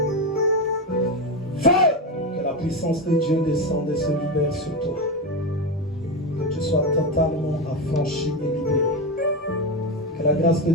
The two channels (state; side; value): normal; both; correlation 0.14